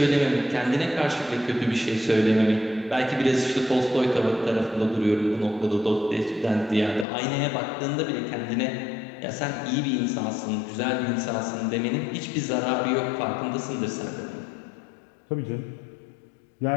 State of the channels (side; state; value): right; drops out; at 7.1 s